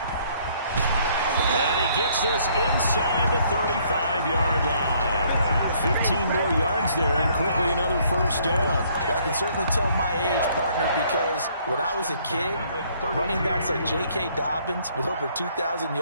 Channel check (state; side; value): inverted; both; correlation -0.64